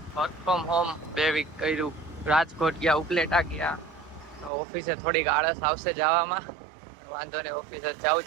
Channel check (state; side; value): drops out; left; at 4.5 s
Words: વર્ક ફ્રોમ હોમ 2 વીક કર્યું. રાજકોટ ગયા, ઉપલેટા ગયા. તો ઓફિસે થોડીક આળસ આવશે જવામાં. વાંધો નહીં, ઓફિસે જવું જ